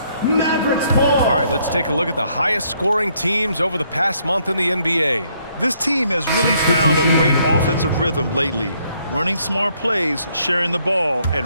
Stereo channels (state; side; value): inverted; both; correlation -0.70